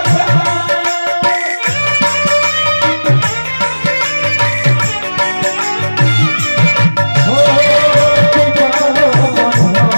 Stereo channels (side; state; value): both; inverted; correlation -1.00